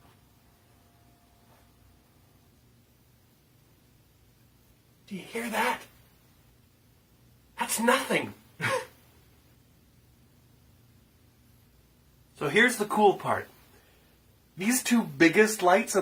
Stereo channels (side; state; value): both; identical; correlation 1.00